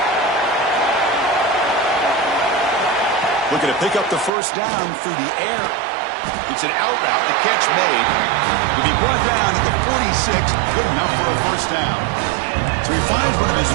Looking to pick up the first down through the air. It's an out route, the catch made. To be brought down at the 46, good enough for a first down. So he finds one of his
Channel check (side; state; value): left; drops out; at 4.3 s